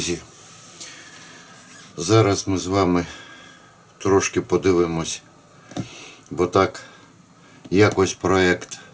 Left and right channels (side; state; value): both; identical; correlation 1.00